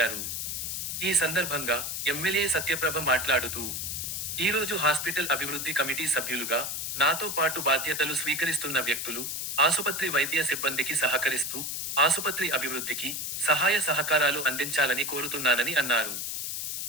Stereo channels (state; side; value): noise; left; hiss, 3 dB below the sound